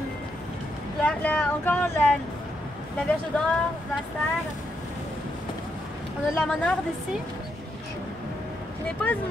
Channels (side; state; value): both; normal; correlation 0.80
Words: Encore la verge d'or, l'astère. On a de la monarde ici. Ce n'est pas